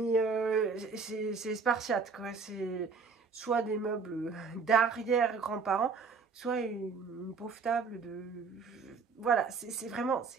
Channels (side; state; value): left; quieter; 5.2 dB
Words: c'est spartiate, quoi. C'est soit des meubles d'arrière-grands-parents, soit une pauvre table de... Voilà, c'est vraiment,